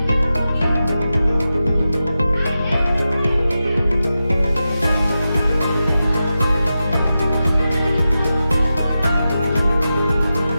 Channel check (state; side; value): inverted; both; correlation -0.92